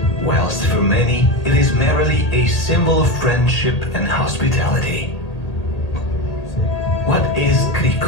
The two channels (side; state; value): right; late; 1.8 ms